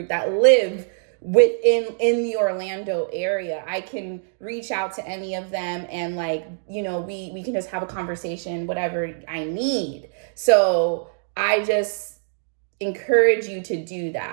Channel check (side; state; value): left; silent; digital silence